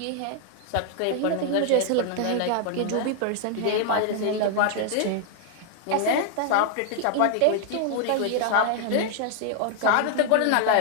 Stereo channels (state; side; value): different; both; correlation 0.00